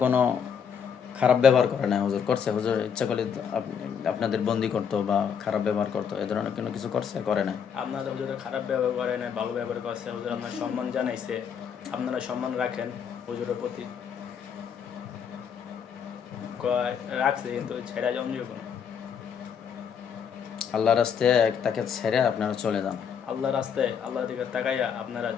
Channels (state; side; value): quieter; right; 7.3 dB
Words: কোনো খারাপ ব্যবহার করে না হুজুর? করছে হুজুর? ইচ্ছা করলে আপনাদের বন্দি করতো বা খারাপ ব্যবহার করতো, এ ধরনের কোনো কিছু করছে? করে না। আপনাদের হুজুর খারাপ ব্যবহার করে না, ভালো ব্যবহার করছে। হুজুর আপনার সম্মান জানাইছে, আপনারা সম্মান রাখেন হুজুরের প্রতি। রাখছে কিন্তু ছেড়া জমজিও কোনো। আল্লাহর রাস্তায় তাকে ছেড়ে আপনারা চলে যান। আল্লাহ রাস্তায় আল্লাহর দিকে তাকাইয়া আপনারা